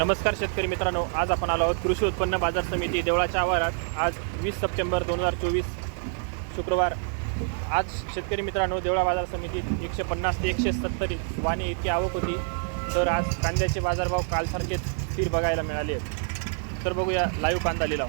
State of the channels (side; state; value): left; silent; 55 dB below the other